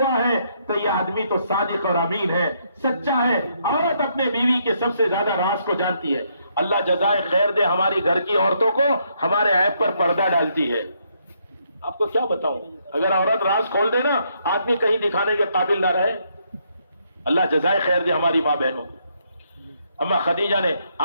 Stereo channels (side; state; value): both; inverted; correlation -0.74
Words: ہے تو یہ آدمی تو صادق اور امین ہے، سچا ہے۔ عورت اپنے بیوی کے سب سے زیادہ راز کو جانتی ہے۔ اللہ جزائے خیر دے ہماری گھر کی عورتوں کو، ہمارے عیب پر پردہ ڈالتی ہے۔ آپ کو کیا بتاؤں، اگر عورت راز کھول دے نا آدمی کہیں دکھانے کے قابل نہ رہے۔ اللہ جزائے خیر دے ہماری ماں بہنوں۔ اما خدیجہ نے